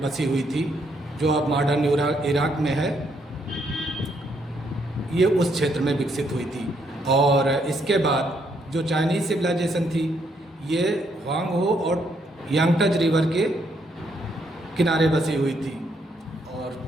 बसी हुई थी, जो अब मॉडर्न इराक में है, ये उस क्षेत्र में विकसित हुई थी। और इसके बाद जो चाइनीज़ सिविलाइजेशन थी ये ह्वांग हो और यांगटज रिवर के किनारे बसी हुई थी। और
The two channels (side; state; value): both; normal; correlation 0.73